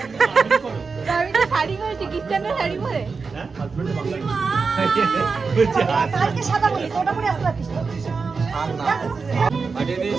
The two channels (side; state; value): left; quieter; 4.8 dB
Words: করে আমি তো শাড়ি পরেছি, খ্রিস্টানরা শাড়ি পরে। কালকে সাদা বলি তো ওটা পরে আসতে পারিস তো। পাঠিয়ে